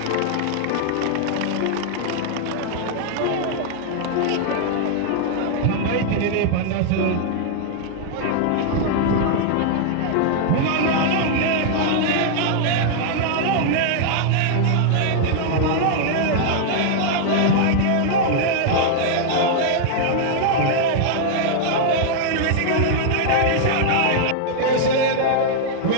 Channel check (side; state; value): both; different; correlation -0.01